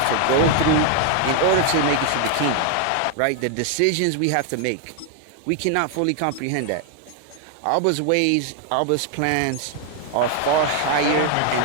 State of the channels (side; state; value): both; different; correlation 0.00